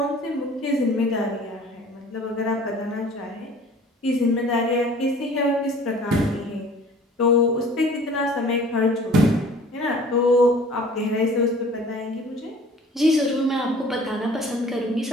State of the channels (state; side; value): normal; both; correlation 0.49